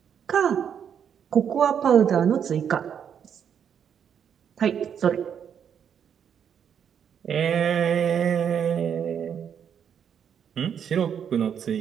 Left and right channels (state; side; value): quieter; left; 8.1 dB